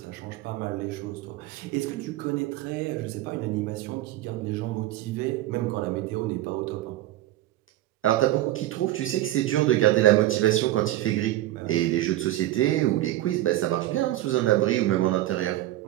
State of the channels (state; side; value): quieter; left; 15.2 dB